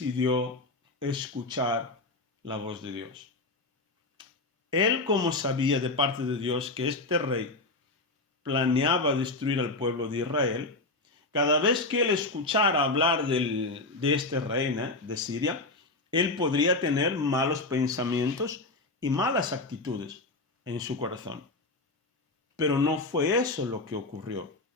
escuchar la voz de Dios. Él, como sabía de parte de Dios que este rey planeaba destruir al pueblo de Israel, cada vez que él escuchara hablar de este rey de Siria, él podría tener malos pensamientos y malas actitudes en su corazón. Pero no fue eso lo que ocurrió.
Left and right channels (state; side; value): quieter; right; 3.1 dB